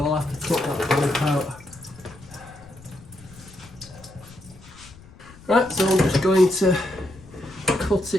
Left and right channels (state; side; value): noise; left; rumble, 21 dB below the sound